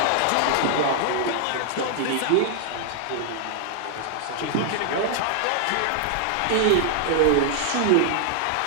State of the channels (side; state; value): both; different; correlation 0.00